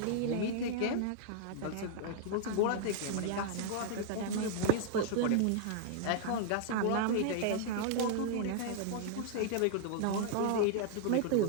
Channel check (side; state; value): both; different; correlation -0.01